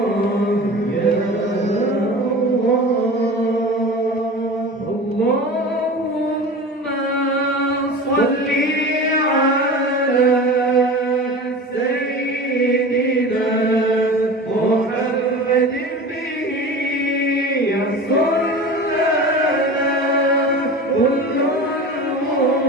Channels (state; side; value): normal; both; correlation 0.34